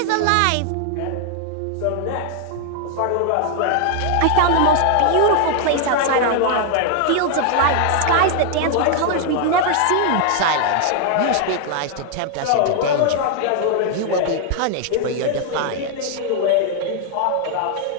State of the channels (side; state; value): both; different; correlation 0.00